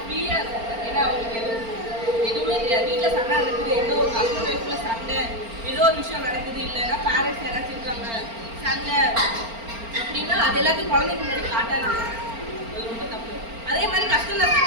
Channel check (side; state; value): left; late; 4.4 ms